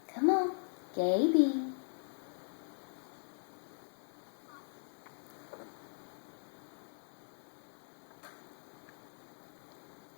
Come on, Gaby.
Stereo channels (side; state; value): right; silent; 51 dB below the other